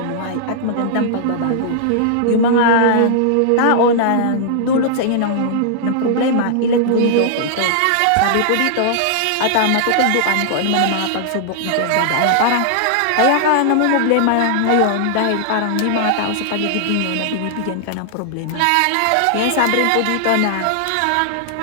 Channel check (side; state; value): both; different; correlation -0.01